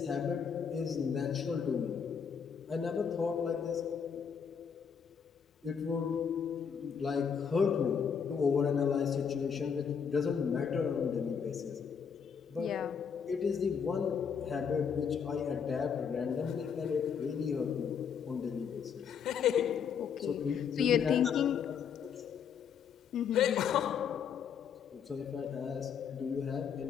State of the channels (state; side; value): quieter; right; 7.0 dB